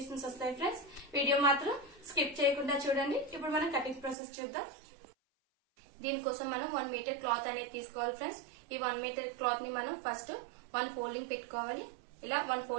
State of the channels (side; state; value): left; drops out; at 4.2 s